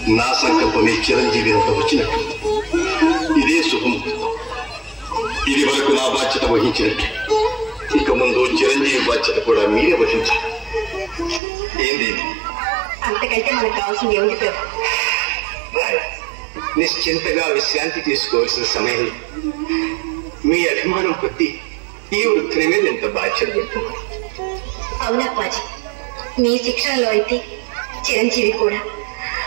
నా సంకల్పమే చిరంజీవి అంత వచ్చినట్టు. ఇదే శుభముహూర్తం. ఇది వరకు నా బాధ్యత వహించినట్టు ఇక ముందు చిరంజీవి బాధ్యత కూడా మీరే వహించాలి. ఏంది? అంతకంటే మనకు కావాల్సింది ఏమిటి పేరు? నిశ్చింతగా విశ్రాంతి తీసుకోవాల్సిన సమయం. మీ అభిమానం కొద్దీ ఈ వృత్తిని మీద ఎంత బాధ్యత పెడుతున్నారు. అవునప్పాజీ, మీ శిక్షణలో అయితే చిరంజీవి కూడా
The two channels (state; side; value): drops out; left; at 11.4 s